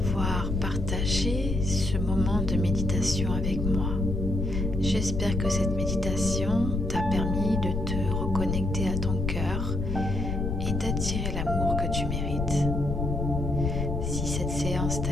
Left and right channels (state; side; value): noise; left; rumble, 1 dB below the sound